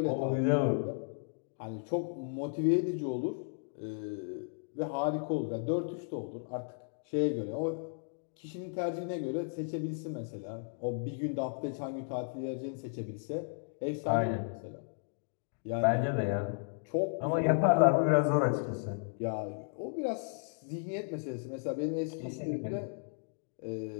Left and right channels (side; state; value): right; silent; digital silence